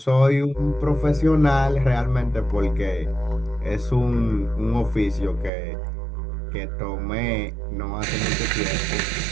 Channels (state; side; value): drops out; left; at 5.5 s